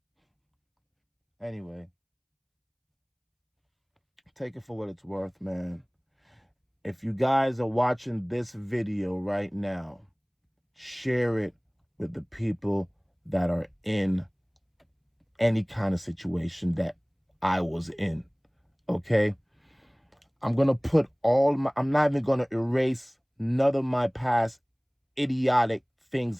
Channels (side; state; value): both; identical; correlation 1.00